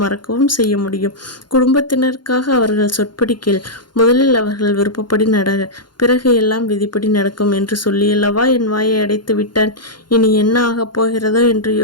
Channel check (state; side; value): late; right; 0.71 ms